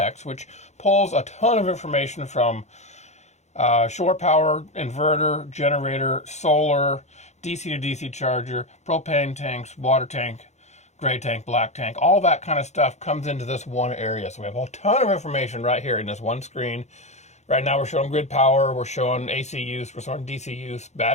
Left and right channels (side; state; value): right; late; 0.33 ms